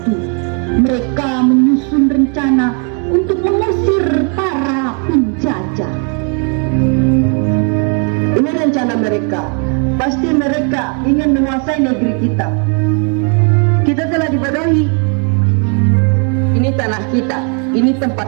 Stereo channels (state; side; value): quieter; left; 39.9 dB